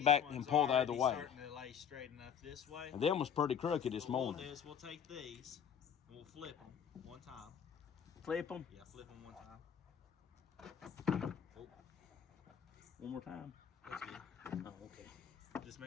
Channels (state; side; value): quieter; right; 8.1 dB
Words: back ones and pull the other already way. Starting to lay straight enough this way. And them was pretty crooked this What we'll morning. do is we'll take these and we'll flip them one time. Flip them Yeah, flip them one time. one more time. That's good. Oh, okay. Just